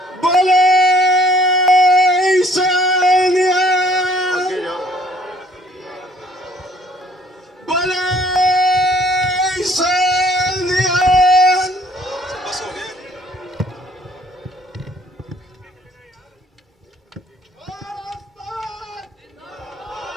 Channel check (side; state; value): both; normal; correlation 0.58